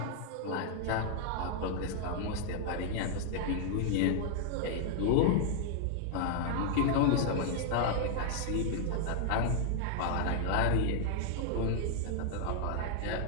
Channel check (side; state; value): both; different; correlation -0.01